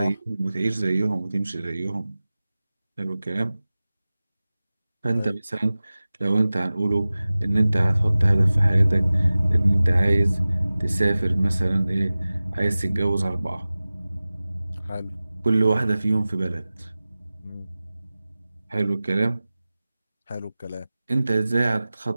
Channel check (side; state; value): both; inverted; correlation -0.97